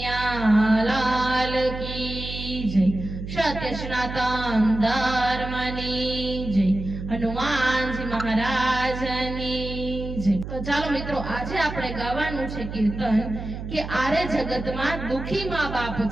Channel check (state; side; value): noise; right; hum, 8 dB below the sound